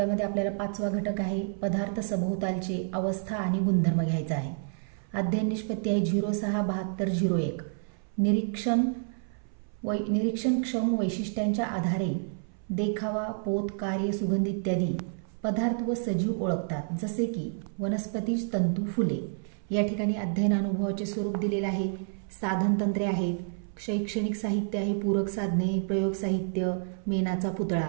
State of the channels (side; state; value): left; silent; 58 dB below the other